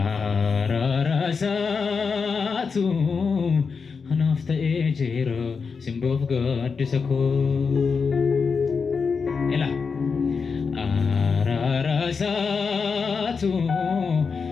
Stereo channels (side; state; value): right; quieter; 5.3 dB